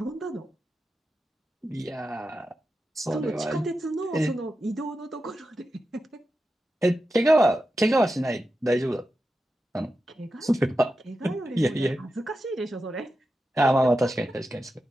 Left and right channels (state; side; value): normal; both; correlation 0.90